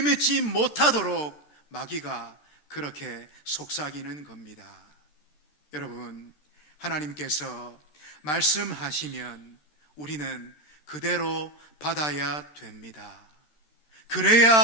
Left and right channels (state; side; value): late; right; 13 ms